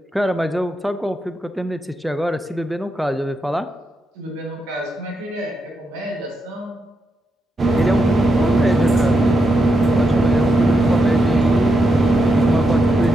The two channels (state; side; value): normal; both; correlation 0.84